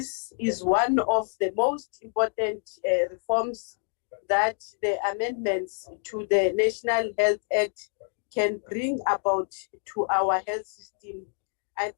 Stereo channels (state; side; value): silent; right; digital silence